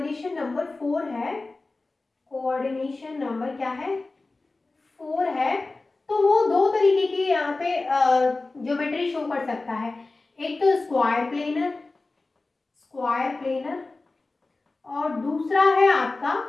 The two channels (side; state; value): right; quieter; 3.4 dB